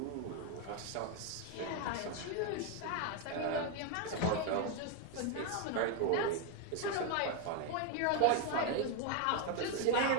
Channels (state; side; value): different; both; correlation 0.01